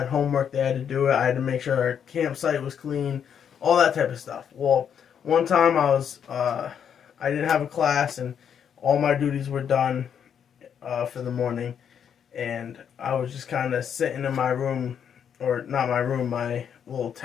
homework, they had to do it. I had to make sure our campsite was clean, all that type of stuff. Well, one time I didn't have a class, and all my duties were done for the morning, and I was just kind of sitting in my room, or not my room, my little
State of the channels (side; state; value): right; quieter; 8.1 dB